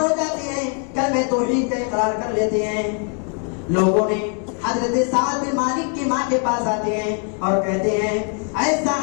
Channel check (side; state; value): right; quieter; 39.3 dB